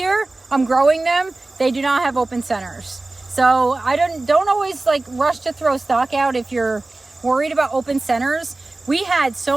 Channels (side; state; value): left; quieter; 3.0 dB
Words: I'm growing them. They do not have open centers. So I don't always like rush to throw stock out if you're worried about open centers. We had